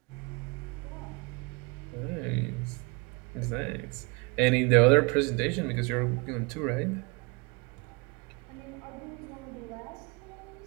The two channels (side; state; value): left; quieter; 29.2 dB